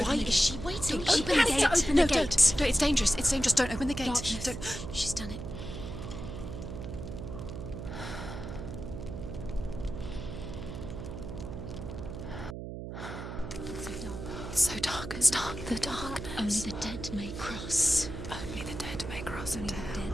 Why is she waiting? Open the gate. Open the gate. Don't. It's dangerous. It's dangerous. Don't open the gate. Don't. She's done it. It's so dark. It's dark. The darkness. Only the dead may cross. Only the dead may cross Only into the hell. dead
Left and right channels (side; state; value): right; noise; hum, 8 dB below the sound